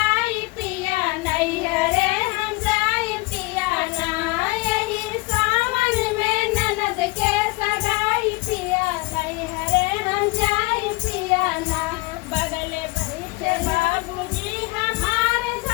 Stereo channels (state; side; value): quieter; right; 25.0 dB